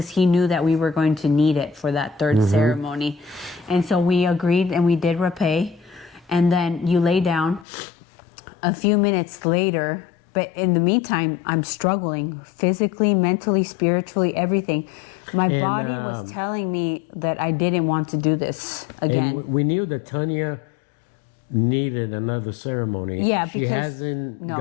he knew that we were going to need it for that third ceremony. And so we agreed and we did rapé. And then you lay down. A few minutes later, but in the meantime, I'm struggling physically, mentally, spiritually, everything. My body was telling me that I didn't want to do this again. And we knew that Tanya needed another ceremony. Yeah, she hasn't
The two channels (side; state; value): right; drops out; at 7.7 s